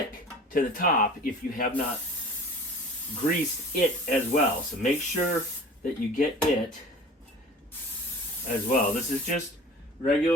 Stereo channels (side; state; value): both; normal; correlation 0.42